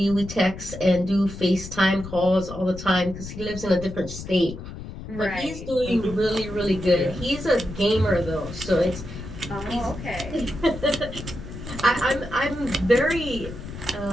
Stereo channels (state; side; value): noise; left; rumble, 11 dB below the sound